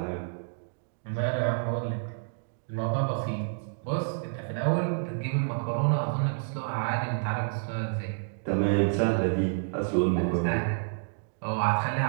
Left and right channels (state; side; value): silent; left; digital silence